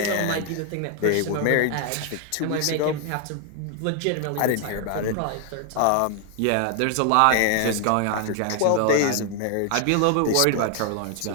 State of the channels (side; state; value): both; different; correlation 0.00